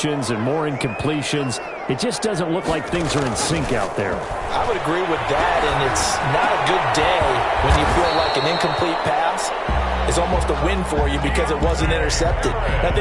and more incompletions. It just doesn't look like things are in sync out there. I would agree with that, and it's not a good day when you feel like an incomplete pass is almost a win for you because it wasn't intercepted. And I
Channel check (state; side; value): identical; both; correlation 1.00